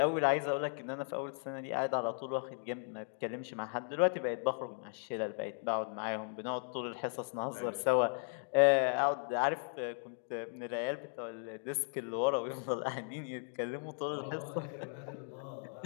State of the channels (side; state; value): right; silent; 54 dB below the other